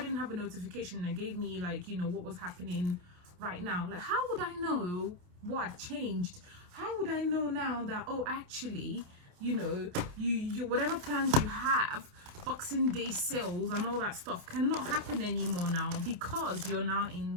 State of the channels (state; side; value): late; left; 28 ms